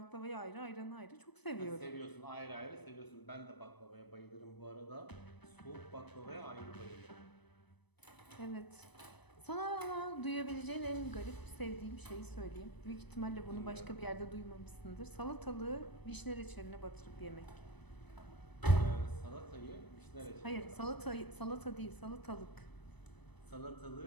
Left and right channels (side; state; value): right; late; 0.99 ms